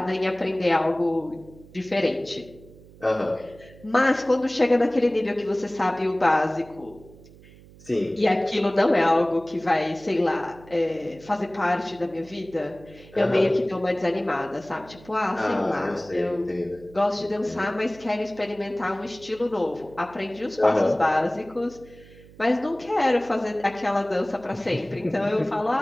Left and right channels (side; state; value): right; noise; hum, 22 dB below the sound